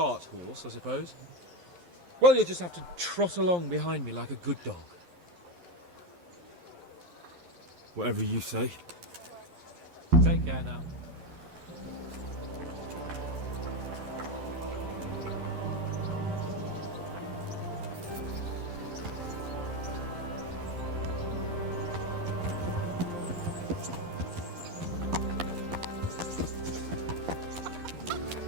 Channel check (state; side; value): late; left; 11 ms